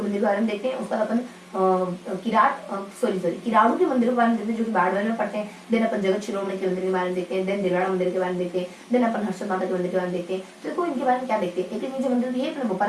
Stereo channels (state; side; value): identical; both; correlation 1.00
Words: मंदिर के बारे में देखते हैं, उसके बाद अपन किराड़ू के मंदिरों के बारे में देखते हैं, जो कि बाड़मेर में पड़ते हैं। देन अपन जगत शिरोमणि के मंदिर के बारे में देखते हैं, देन दिलवाड़ा मंदिर के बारे में देखते हैं, देन अपन हर्षद माता के मंदिर के बारे में देखते हैं। तो देखो इनके बारे में क्या देखते हैं। एक लिंगी जी मंदिर ये अपने